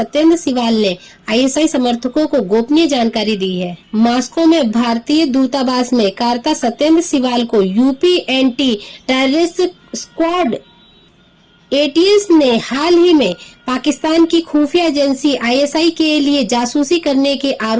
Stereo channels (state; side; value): identical; both; correlation 1.00